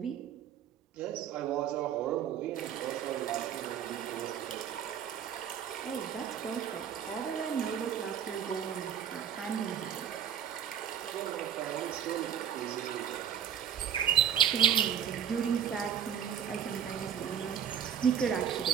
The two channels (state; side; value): quieter; left; 8.9 dB